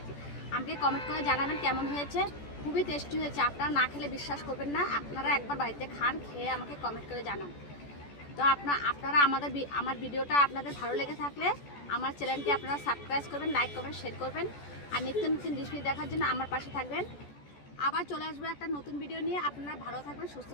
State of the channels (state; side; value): late; right; 14 ms